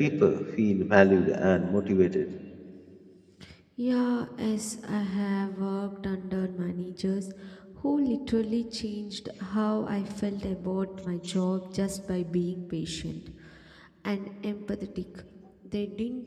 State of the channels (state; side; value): identical; both; correlation 1.00